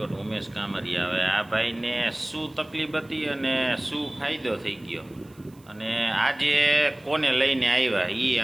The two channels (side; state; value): right; noise; hiss, 29 dB below the sound